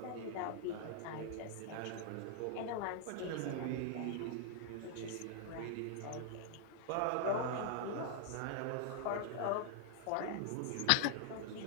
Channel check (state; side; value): different; both; correlation 0.00